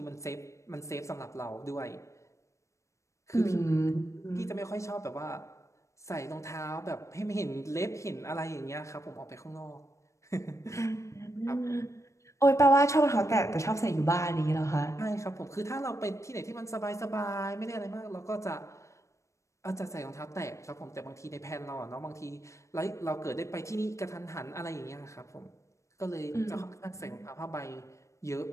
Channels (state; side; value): late; right; 0.15 ms